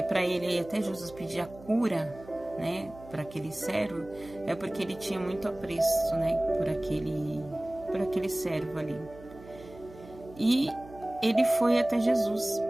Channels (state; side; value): noise; right; hum, 19 dB below the sound